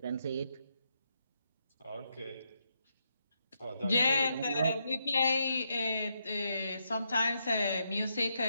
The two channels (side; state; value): both; inverted; correlation -0.80